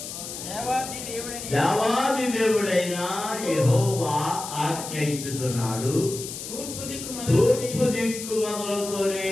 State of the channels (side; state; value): left; noise; hiss, 9 dB below the sound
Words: దేవాది దేవుడైన యెహోవా ఆజ్ఞ ఇచ్చుతున్నాడు, తూర్పు దిక్కు మొదలుకొని